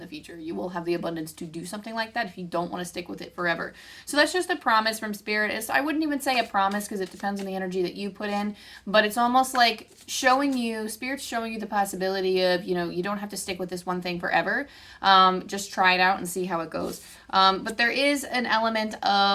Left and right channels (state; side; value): identical; both; correlation 1.00